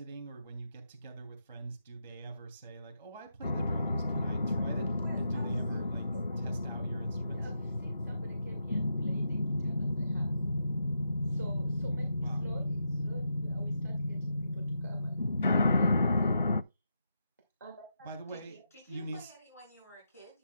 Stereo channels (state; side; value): inverted; both; correlation -0.83